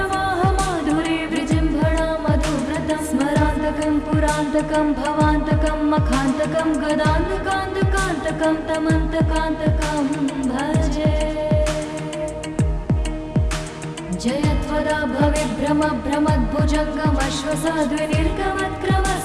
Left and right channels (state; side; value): identical; both; correlation 1.00